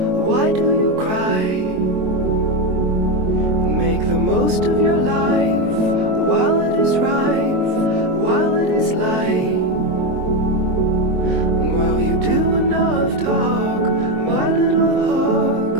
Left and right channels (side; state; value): left; late; 23 ms